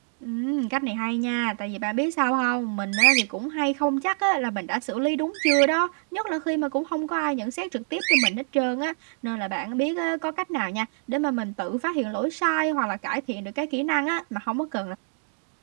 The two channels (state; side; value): silent; left; digital silence